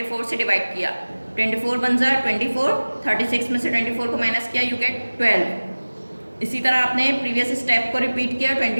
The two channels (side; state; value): both; inverted; correlation -1.00